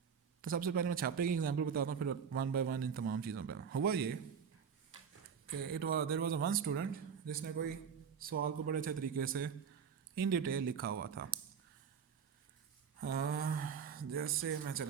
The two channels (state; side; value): quieter; left; 6.9 dB